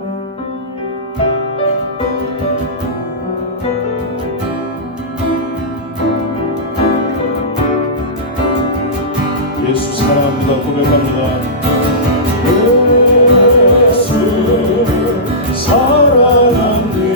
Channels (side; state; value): both; normal; correlation -0.18